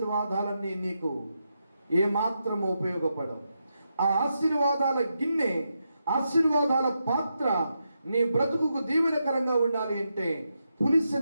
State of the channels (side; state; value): both; inverted; correlation -0.85